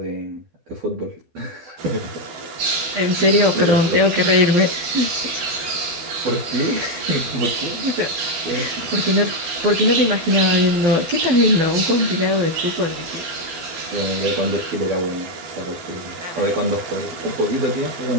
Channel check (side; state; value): left; late; 12 ms